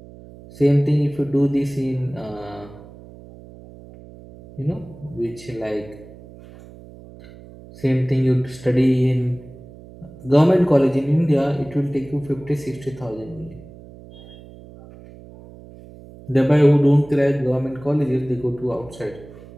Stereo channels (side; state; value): right; noise; hum, 19 dB below the sound